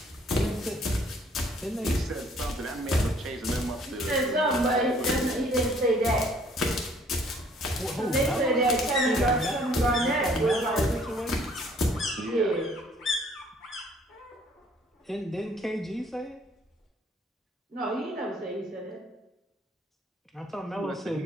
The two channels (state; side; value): normal; both; correlation 0.60